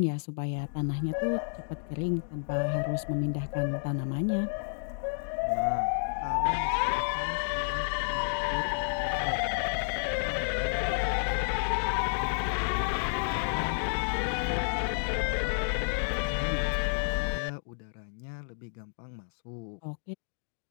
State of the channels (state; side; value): silent; right; digital silence